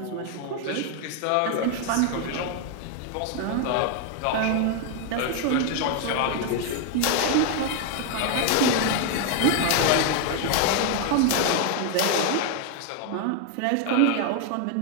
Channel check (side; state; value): both; different; correlation 0.00